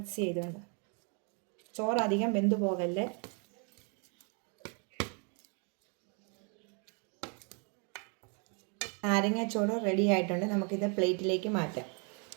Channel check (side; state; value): left; quieter; 37.4 dB